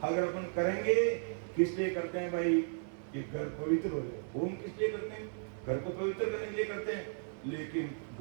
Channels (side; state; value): left; silent; digital silence